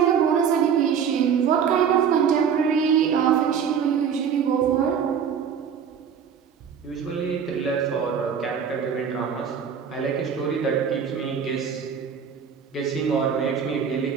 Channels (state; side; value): quieter; left; 7.3 dB